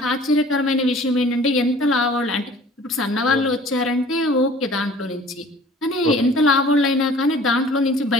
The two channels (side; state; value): both; normal; correlation 0.49